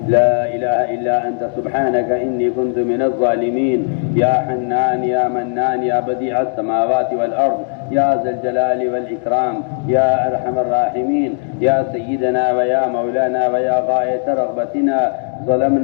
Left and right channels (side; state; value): right; silent; digital silence